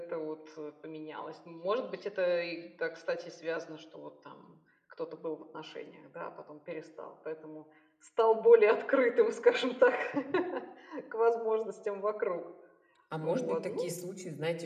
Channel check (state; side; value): identical; both; correlation 1.00